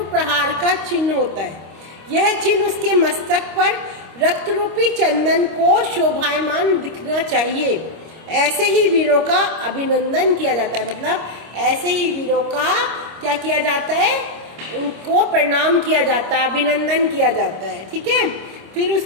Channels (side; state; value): left; late; 25 ms